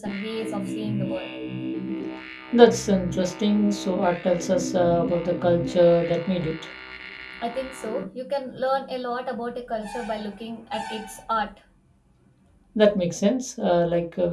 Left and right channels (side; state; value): both; identical; correlation 1.00